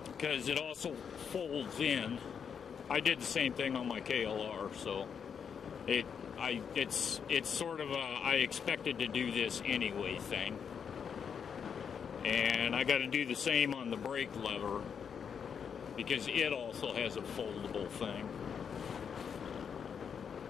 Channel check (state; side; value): quieter; right; 7.1 dB